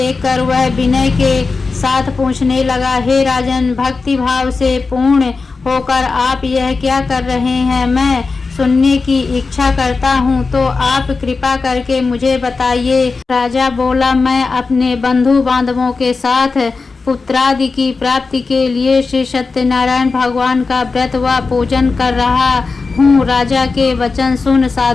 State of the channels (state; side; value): quieter; right; 4.3 dB